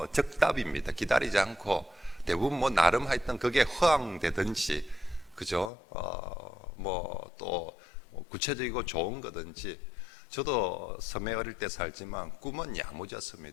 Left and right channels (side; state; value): right; drops out; at 5.7 s